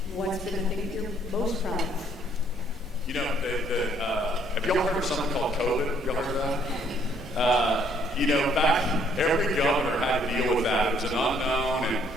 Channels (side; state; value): both; normal; correlation 0.65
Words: What's been the thing you're most proud of? You know, have y'all heard of something called COVID? Y'all heard of that? in fact, every governor had to deal with that. It was an unknown,